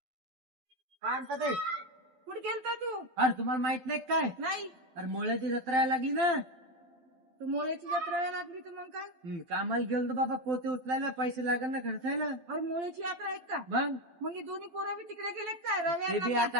काय म्हणतात ते? कुठे गेलता तू? अरे तुम्हाला माहित नाही काय? नाही. अरे मोळ्याची जत्रा यायला लागली ना. तू मोळ्याची जत्रा यायला लागली तर मग काय? कामाला गेलो बाबा, पोते उचलायला पैसे लागेल ना, खर्च आहे ना. अरे मोळ्याची यात्रा आहे का? मग हे दोन्ही पोरं बी तिकडे गेलेत काय? ते बी रव्या आता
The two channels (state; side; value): late; left; 12 ms